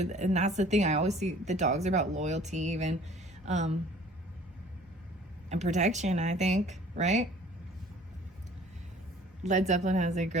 that's the thing. I always see the dogs are about loyalty, even, and protection. I think, right? Led Zeppelin has a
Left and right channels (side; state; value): both; normal; correlation 0.51